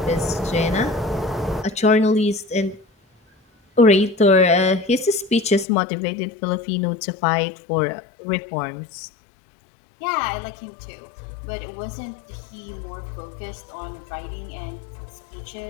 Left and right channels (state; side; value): drops out; right; at 5.7 s